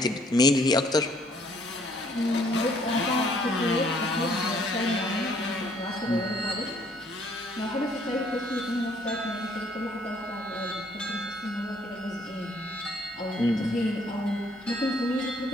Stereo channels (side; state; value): both; normal; correlation 0.63